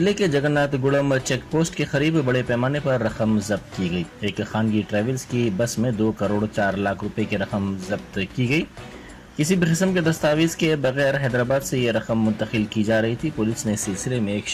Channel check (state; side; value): identical; both; correlation 1.00